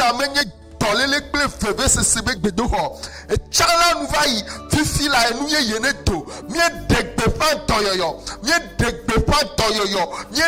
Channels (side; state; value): both; identical; correlation 1.00